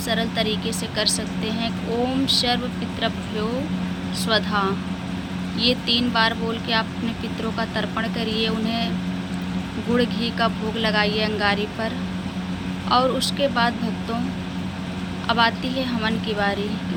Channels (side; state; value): both; identical; correlation 1.00